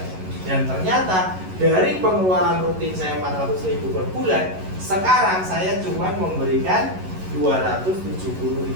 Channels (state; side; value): late; left; 11 ms